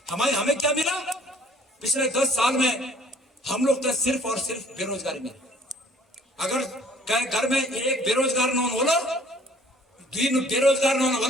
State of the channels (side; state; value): both; normal; correlation 0.56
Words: हमें क्या मिला? पिछले 10 साल में हम लोग तो सिर्फ और सिर्फ बेरोजगारी में। अगर घर में एक बेरोजगार नौन होला, 2 बेरोजगार नौन